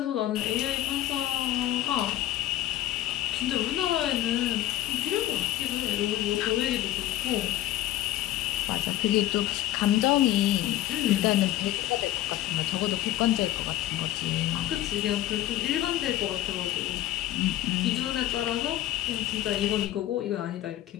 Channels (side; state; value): right; quieter; 14.0 dB